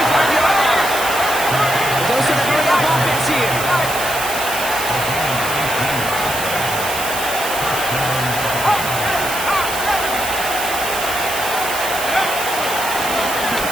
line. Goes to the hurry-up offense here.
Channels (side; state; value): right; noise; hiss, 6 dB below the sound